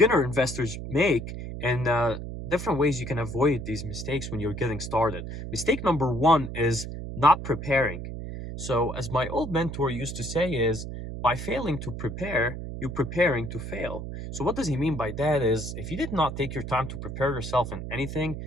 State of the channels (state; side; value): noise; right; hum, 7 dB below the sound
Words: investors make, and different ways you can avoid these mistakes when you're getting started. Mistake number one is not preparing. So, as my old mentor used to say, is by failing to prepare, you're preparing to fail. So, what does he mean by that? Is if you did not take your time to prepare yourself in anything,